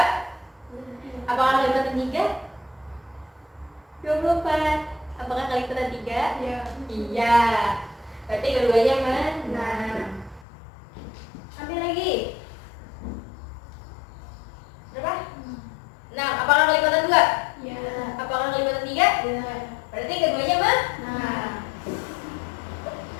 Apakah kelipatan 3? 24. Apakah kelipatan 3? Iya. Iya. Berarti keduanya menang. Ambil lagi. Berapa? 6. Apakah kelipatan 2? Iya. Apakah kelipatan 3? Iya. Berarti keduanya menang.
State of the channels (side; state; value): right; drops out; at 10.5 s